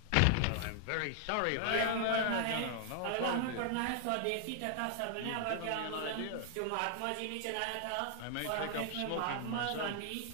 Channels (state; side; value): different; both; correlation 0.00